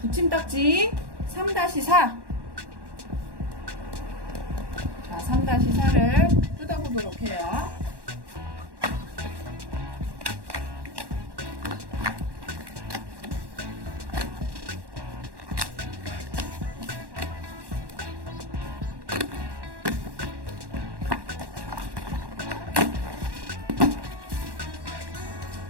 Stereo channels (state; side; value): late; left; 1.1 ms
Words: 붙임딱지 3-4. 자, 3-4를 뜯어보도록 해요.